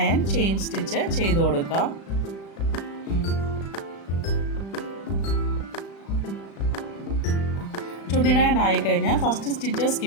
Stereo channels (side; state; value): right; late; 36 ms